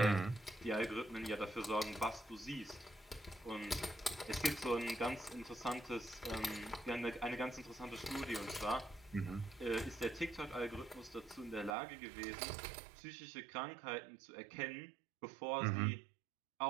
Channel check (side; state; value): left; drops out; at 11.8 s